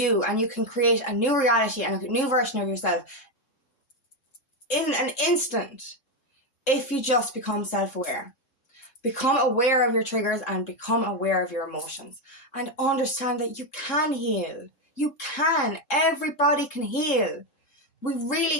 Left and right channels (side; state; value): right; late; 3.7 ms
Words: and you can create a new reality and a new version of yourself in an instant if you just become self-aware. Become aware of your triggers and become aware of your emotions, and understand that you can heal. You can. Everybody can heal. We